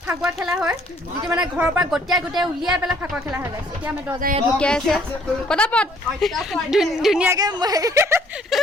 ফাকুৱা খেলা হয় যিটো মানে ঘৰৰ পৰা গোটেই উলিয়াই পেলাই ফাকুৱা খেলা হয় গাইছ এতিয়া আমি দৰ্জা ইয়াত ঢুকিয়াই আছে পটাপট ধুনীয়াকৈ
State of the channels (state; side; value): normal; both; correlation 0.62